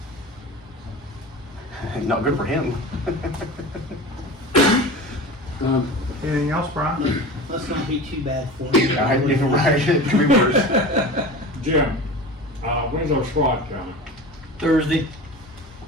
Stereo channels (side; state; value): both; normal; correlation 0.33